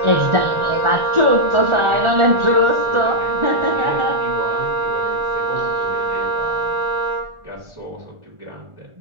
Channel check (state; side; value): late; left; 1.4 ms